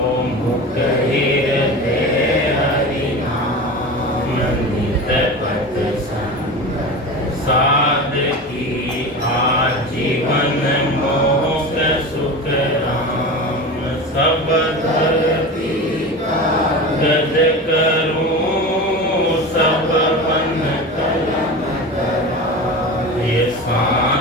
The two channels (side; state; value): both; normal; correlation 0.30